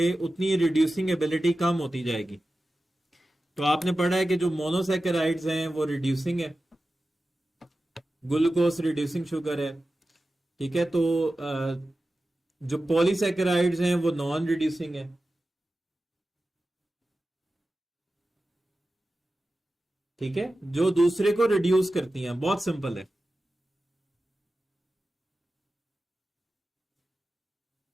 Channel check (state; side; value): normal; both; correlation 0.94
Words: उतनी रिड्यूसिंग एबिलिटी कम होती जाएगी। तो आपने पढ़ा है कि जो मोनोसेकेराइड्स हैं वो रिड्यूसिंग है, ग्लूकोज रिड्यूसिंग शुगर है। ठीक है। तो जो पॉलीसेकेराइड्स हैं वो नॉन रिड्यूसिंग है। ठीक है, जो दूसरे को रिड्यूस करती हैं। बहुत सिंपल है।